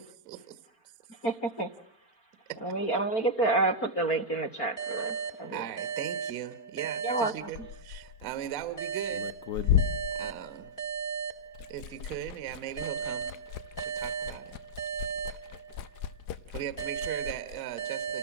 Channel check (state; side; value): late; right; 4.9 ms